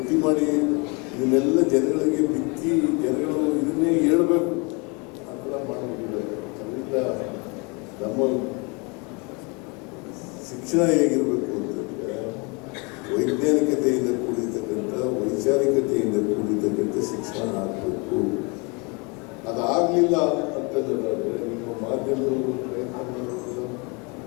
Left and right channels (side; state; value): right; quieter; 30.4 dB